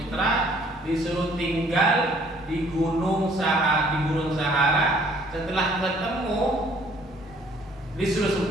disuruh tinggal di Gurun Sahara. Setelah ketemu, disuruh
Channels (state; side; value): normal; both; correlation 0.60